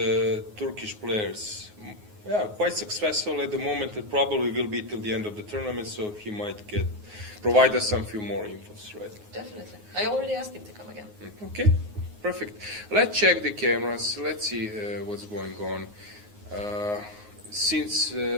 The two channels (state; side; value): late; left; 9.5 ms